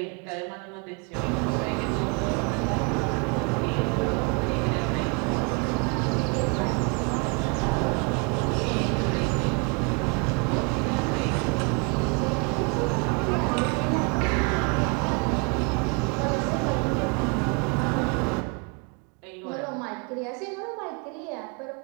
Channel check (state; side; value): quieter; left; 33.5 dB